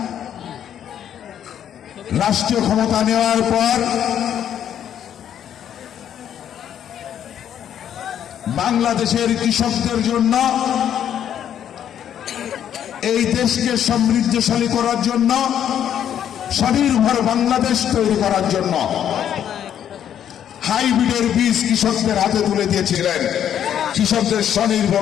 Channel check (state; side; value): quieter; right; 9.7 dB